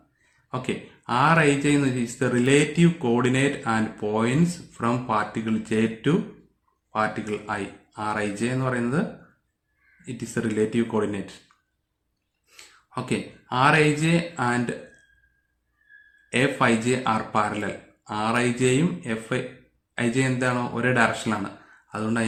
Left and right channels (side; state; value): both; identical; correlation 1.00